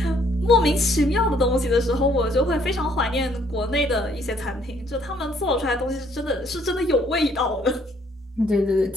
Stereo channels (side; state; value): both; normal; correlation 0.65